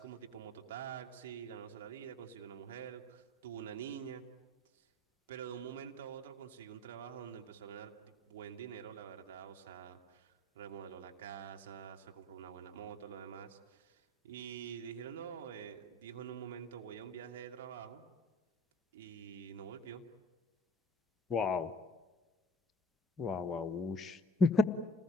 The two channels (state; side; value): normal; both; correlation 0.48